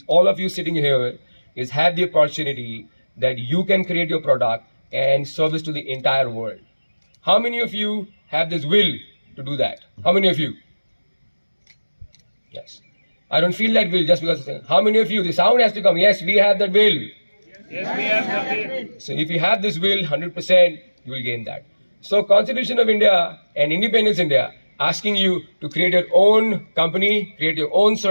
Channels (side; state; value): both; inverted; correlation -1.00